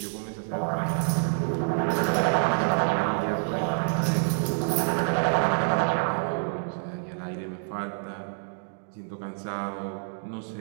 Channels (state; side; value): silent; left; digital silence